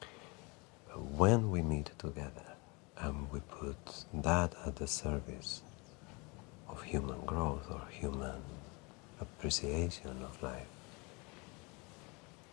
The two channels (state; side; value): quieter; right; 28.6 dB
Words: When we meet together and we put that at the service of human growth or human appreciation of life,